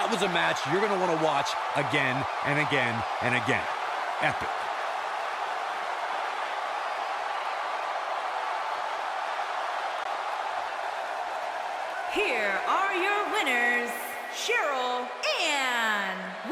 was a match you're going to want to watch again and again and again. Epic. Here are your winners, Cheryl and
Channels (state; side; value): identical; both; correlation 1.00